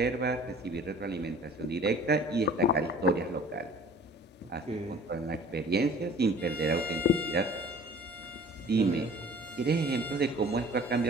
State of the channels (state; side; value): normal; both; correlation 0.48